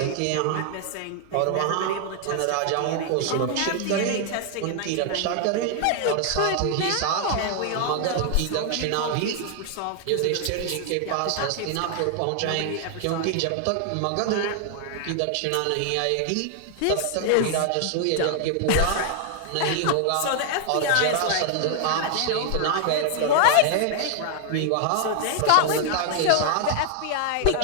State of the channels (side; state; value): both; different; correlation 0.00